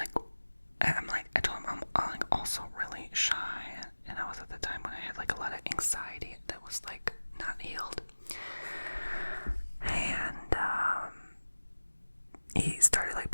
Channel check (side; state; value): both; inverted; correlation -1.00